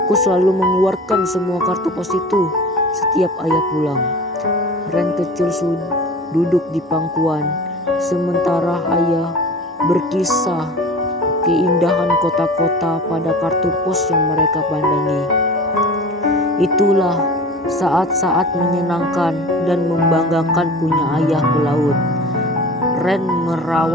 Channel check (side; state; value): both; normal; correlation 0.38